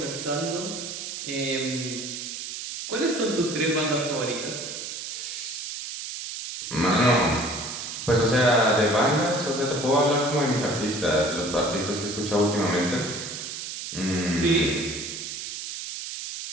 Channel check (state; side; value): noise; right; hiss, 7 dB below the sound